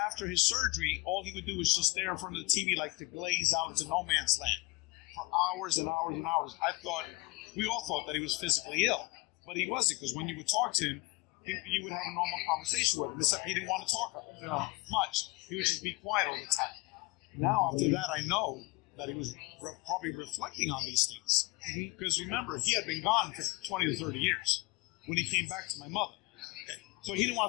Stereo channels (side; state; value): right; quieter; 24.7 dB